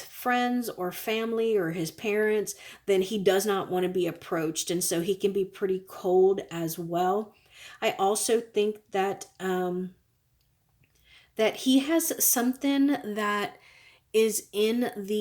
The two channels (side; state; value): both; identical; correlation 1.00